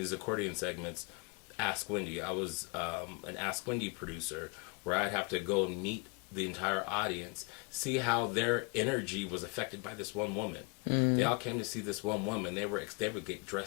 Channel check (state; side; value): quieter; right; 31.5 dB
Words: accordion segments. Ask Wendy. I was an Ask Wendy producer, where I'd have to go and meet the entire audience, see how their energy was affected by this one woman. They all came to see this one woman. They would get